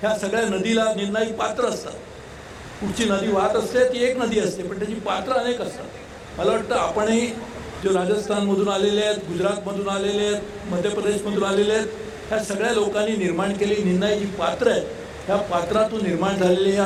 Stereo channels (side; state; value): both; identical; correlation 1.00